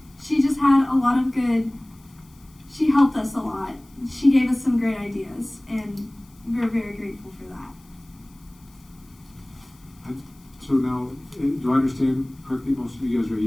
she just had a lot of she helped us a lot. She gave us some great ideas, and we're very grateful for that. So now, do I understand correctly, most of you guys are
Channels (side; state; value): left; noise; hiss, 29 dB below the sound